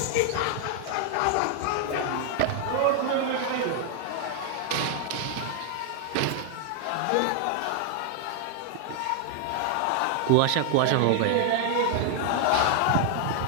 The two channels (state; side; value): different; both; correlation 0.00